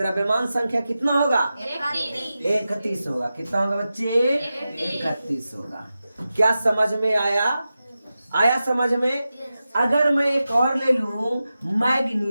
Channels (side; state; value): both; inverted; correlation -0.93